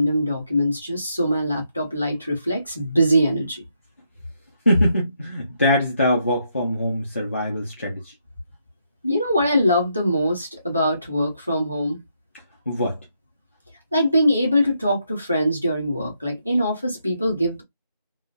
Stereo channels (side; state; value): both; inverted; correlation -0.77